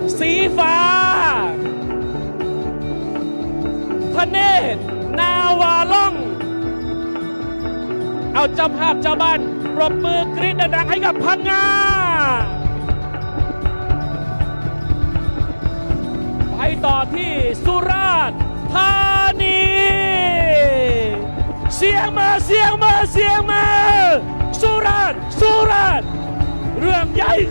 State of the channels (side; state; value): both; inverted; correlation -1.00